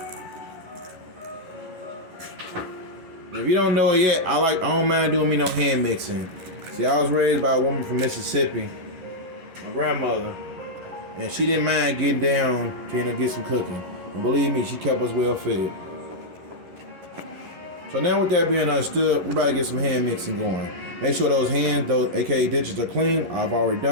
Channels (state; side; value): late; left; 11 ms